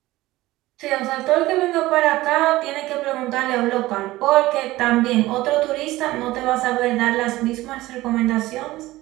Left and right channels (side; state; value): left; quieter; 17.7 dB